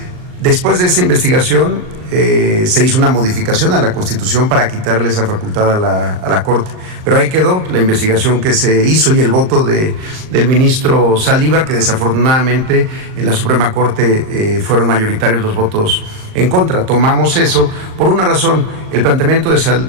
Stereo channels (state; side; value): late; left; 38 ms